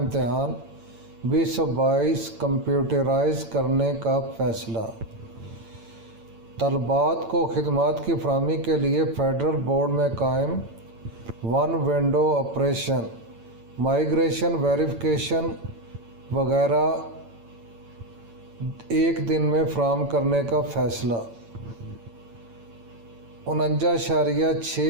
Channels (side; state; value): left; late; 8.9 ms